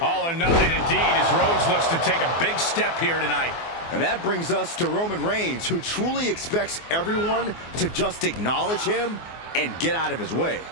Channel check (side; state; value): right; late; 24 ms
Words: All or nothing indeed as Rhodes looks to take a big step here tonight. And that brings us to Roman Reigns, who truly expects everyone to just acknowledge him and get out of his way.